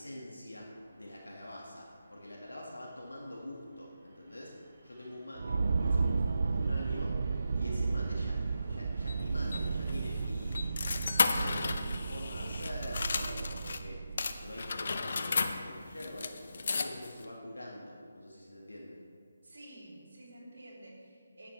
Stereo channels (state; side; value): inverted; both; correlation -0.87